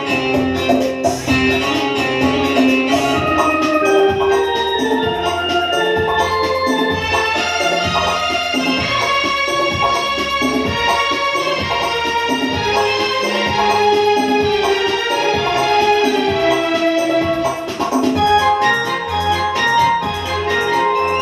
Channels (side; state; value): both; identical; correlation 1.00